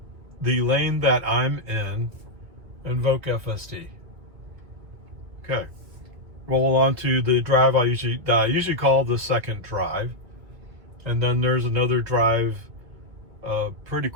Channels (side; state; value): left; late; 2.4 ms